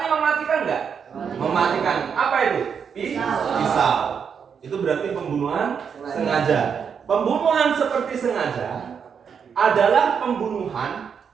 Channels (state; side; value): quieter; left; 6.9 dB